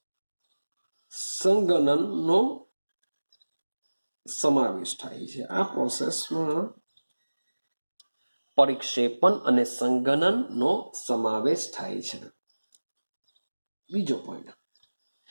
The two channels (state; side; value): inverted; both; correlation -1.00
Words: સંઘનનનો સમાવેશ થાય છે. આ પ્રોસેસમાં પરિક્ષેપણ અને સંઘનનનો સમાવેશ થાય છે. બીજો પોઈન્ટ,